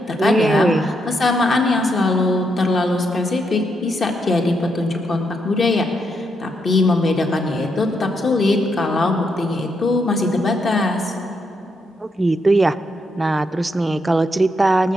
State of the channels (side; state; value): both; normal; correlation 0.79